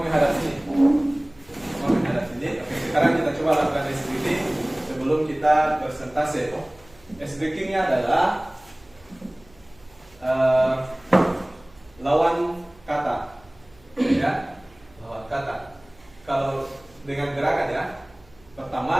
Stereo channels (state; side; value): noise; right; hum, 28 dB below the sound